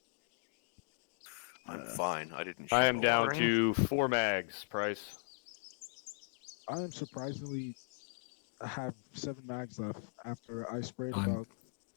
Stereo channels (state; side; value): silent; right; digital silence